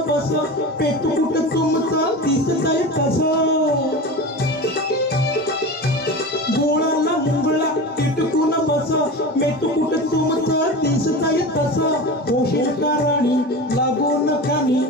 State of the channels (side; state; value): both; normal; correlation 0.29